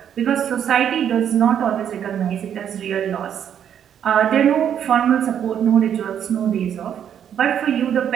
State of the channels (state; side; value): quieter; left; 9.1 dB